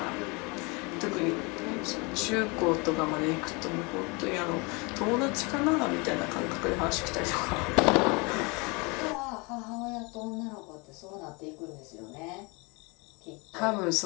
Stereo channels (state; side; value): quieter; right; 28.9 dB